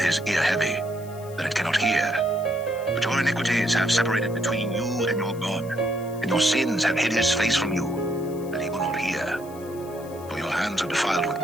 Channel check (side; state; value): left; noise; hiss, 22 dB below the sound